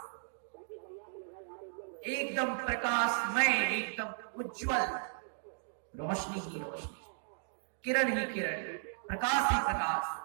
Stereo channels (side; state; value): left; silent; digital silence